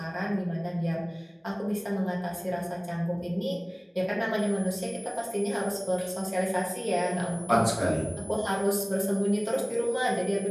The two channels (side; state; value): both; identical; correlation 1.00